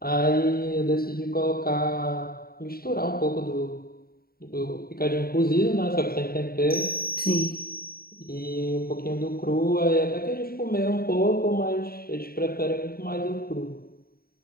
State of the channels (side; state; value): right; late; 0.43 ms